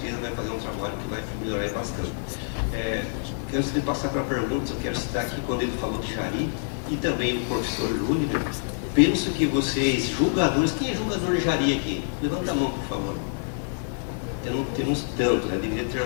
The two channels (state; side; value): silent; right; digital silence